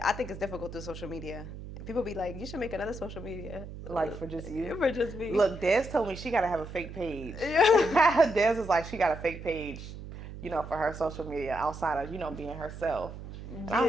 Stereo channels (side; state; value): right; noise; hum, 11 dB below the sound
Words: I think it's difficult through social media. People be like, you should make another social media. Like, for just you? For just me. Look, Des told me she got to have a fake page. Des is like, she got a fake page, you know, for her social media outside of, you know, being herself. And I